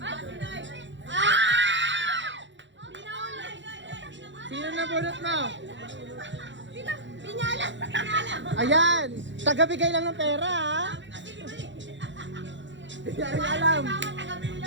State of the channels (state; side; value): late; left; 0.54 ms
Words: Sino nabunot mo? Pinyala! Ayan! Tagabigay lang ng pera, ha? Hindi rin alam.